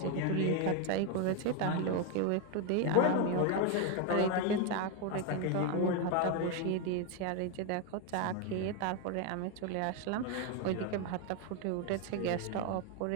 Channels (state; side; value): different; both; correlation 0.01